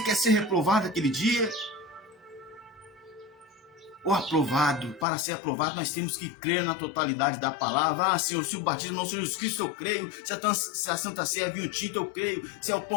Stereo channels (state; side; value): drops out; right; at 5.1 s